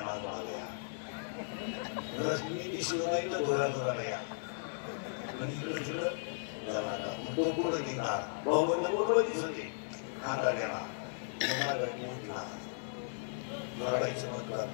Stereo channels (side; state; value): right; silent; 54 dB below the other